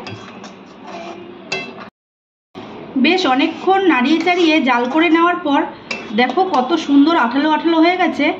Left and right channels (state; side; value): identical; both; correlation 1.00